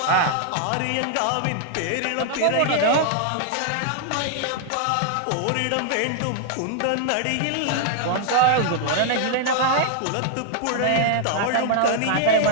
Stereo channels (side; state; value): both; different; correlation 0.00